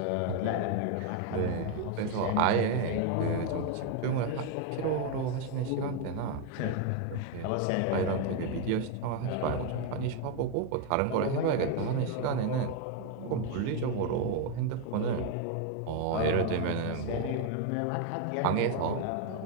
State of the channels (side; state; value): both; different; correlation 0.01